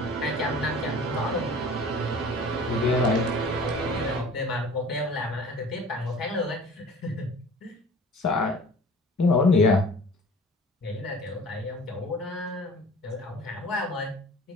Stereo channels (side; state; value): both; normal; correlation 0.45